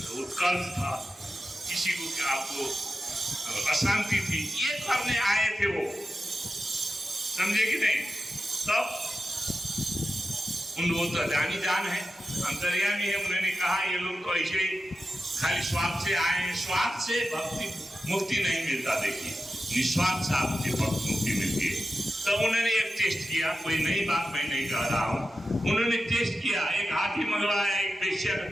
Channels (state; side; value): normal; both; correlation 0.92